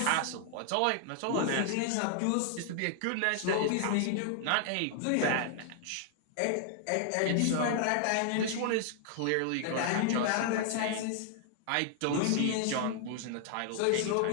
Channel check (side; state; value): both; different; correlation 0.00